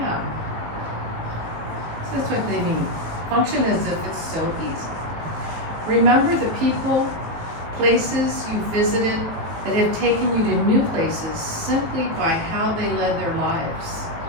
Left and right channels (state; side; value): late; left; 19 ms